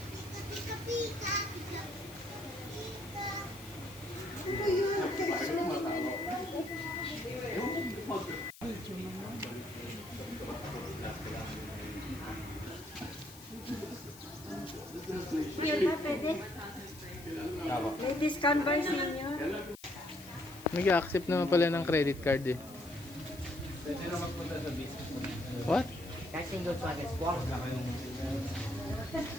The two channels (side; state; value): left; noise; hiss, 18 dB below the sound